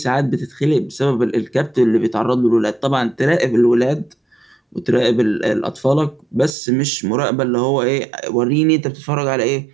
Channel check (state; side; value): drops out; left; at 6.6 s